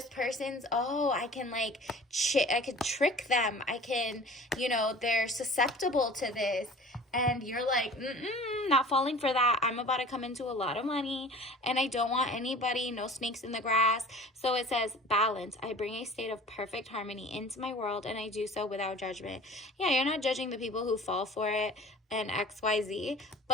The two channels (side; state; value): both; normal; correlation 0.43